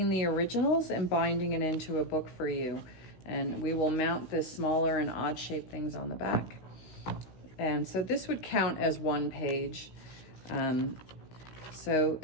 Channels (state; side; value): late; right; 16 ms